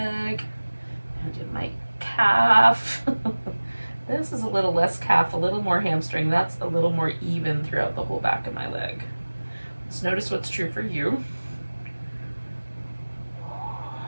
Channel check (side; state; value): both; inverted; correlation -1.00